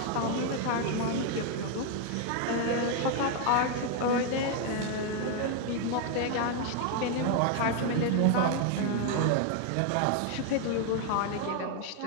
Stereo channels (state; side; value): different; both; correlation 0.00